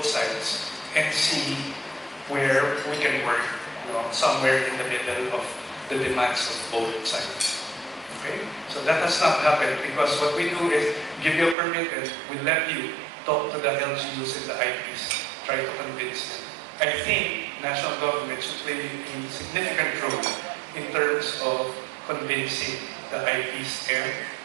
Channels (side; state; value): left; drops out; at 11.6 s